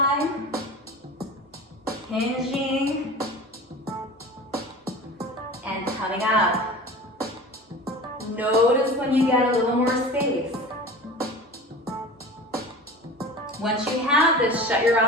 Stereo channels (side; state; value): both; normal; correlation 0.36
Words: Hinging. And coming up. Notice when you get a little more space. Once you have this, shut your